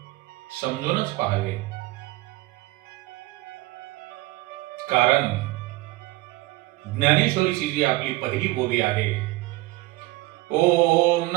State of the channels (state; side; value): quieter; left; 20.2 dB